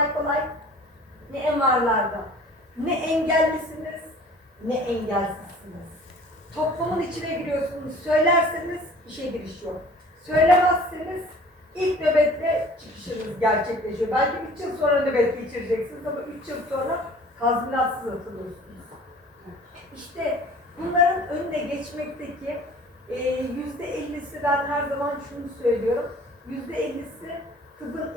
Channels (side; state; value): both; normal; correlation 0.48